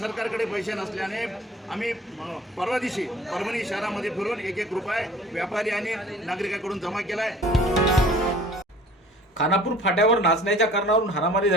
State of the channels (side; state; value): both; normal; correlation 0.49